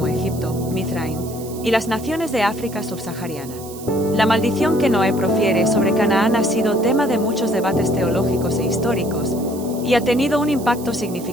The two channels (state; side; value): noise; right; hiss, 16 dB below the sound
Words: Egipto, Mizraim, y las naciones de África subsahariana. La maldición que Noé profiere sobre Canaán ha sido tema de muchos debates teológicos e históricos, y ha tenido un impacto